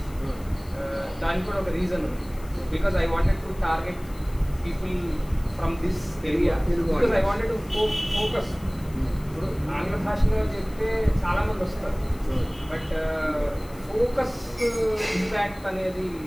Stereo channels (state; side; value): noise; left; hiss, 23 dB below the sound